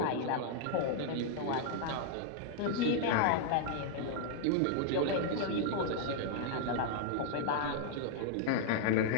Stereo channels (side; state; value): both; different; correlation 0.00